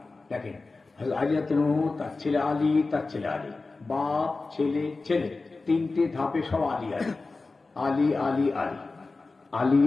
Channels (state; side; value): quieter; right; 3.7 dB